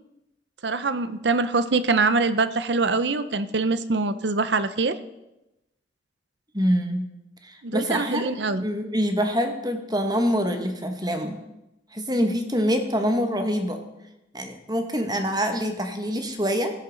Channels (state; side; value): normal; both; correlation 0.43